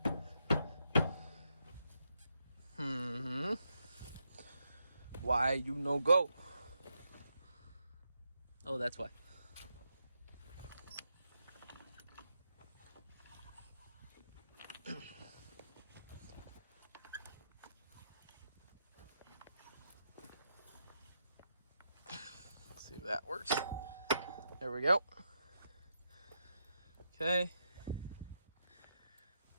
Why you no go? Oh, that's why. See if that works. There we go. Okay.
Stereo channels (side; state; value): both; inverted; correlation -0.82